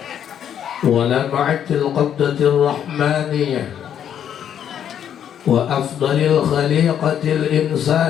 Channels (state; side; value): quieter; right; 9.3 dB